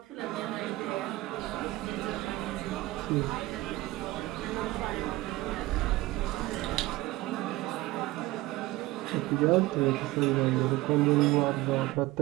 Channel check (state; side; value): quieter; left; 18.5 dB